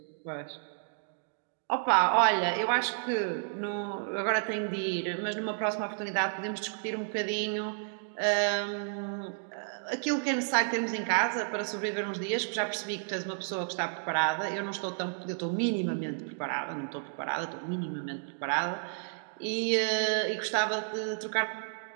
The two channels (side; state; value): left; silent; digital silence